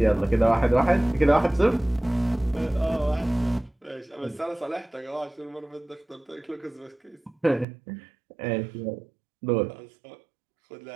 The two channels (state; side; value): drops out; left; at 7.7 s